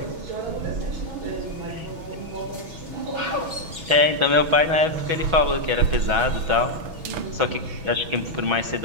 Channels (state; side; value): late; left; 6.1 ms